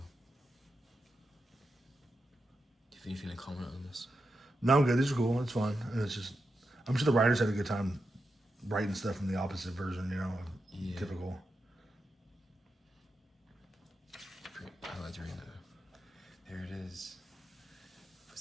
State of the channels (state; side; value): normal; both; correlation 0.87